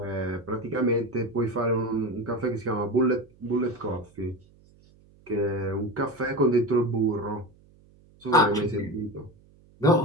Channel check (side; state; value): right; noise; hum, 28 dB below the sound